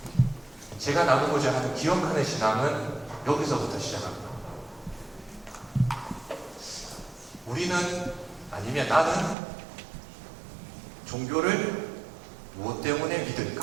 제가 나누고자 하는 기억하는 신앙은 여기서부터 시작합니다. 우리는 아니면 나는 종교를 무엇 때문에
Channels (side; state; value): left; drops out; at 9.3 s